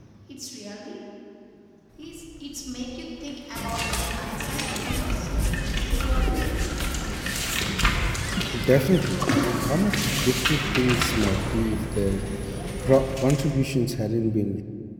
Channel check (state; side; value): identical; both; correlation 1.00